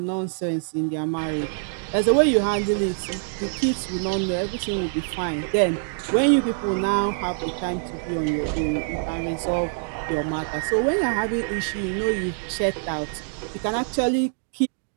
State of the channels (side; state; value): left; silent; digital silence